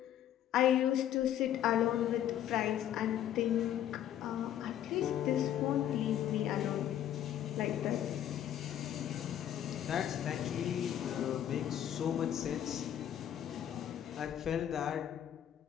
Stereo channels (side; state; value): right; quieter; 10.9 dB